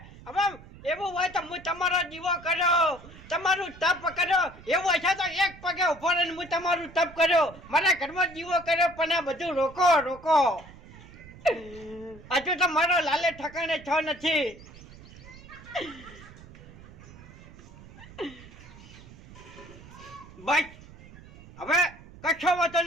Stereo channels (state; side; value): noise; right; rumble, 19 dB below the sound